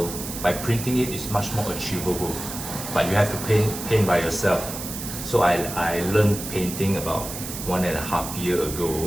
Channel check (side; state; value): right; noise; hiss, 8 dB below the sound